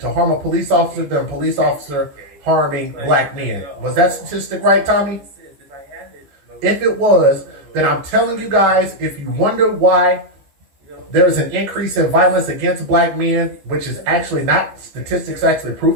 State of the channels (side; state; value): left; late; 14 ms